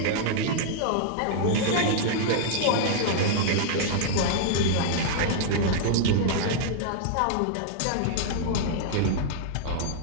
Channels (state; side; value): different; both; correlation -0.01